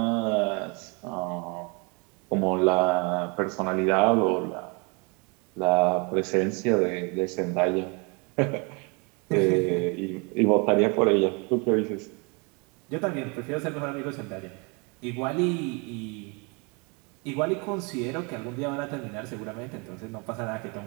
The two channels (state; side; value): quieter; left; 31.1 dB